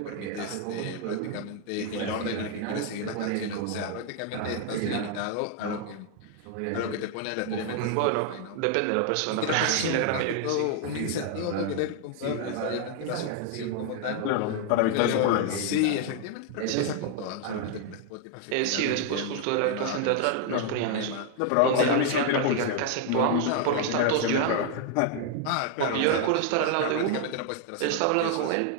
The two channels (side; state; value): both; different; correlation 0.00